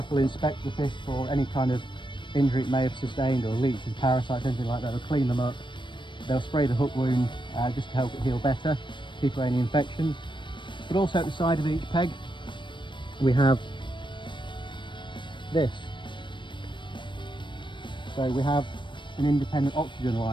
will inspect the fish for any kind of injury it may have sustained, or leeches, parasites, anything like that. They'll clean them up. They'll spray the hook wound just to help it heal better, keep away any infections. But also at the side of each peg, we have this. So we have an independent oxygen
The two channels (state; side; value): late; right; 0.23 ms